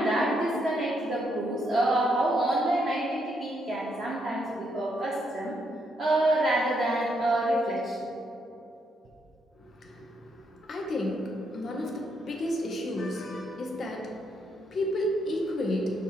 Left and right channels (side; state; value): both; normal; correlation 0.76